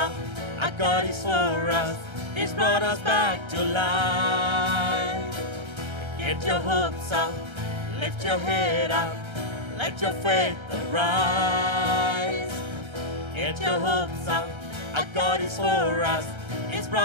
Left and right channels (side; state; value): left; late; 1.3 ms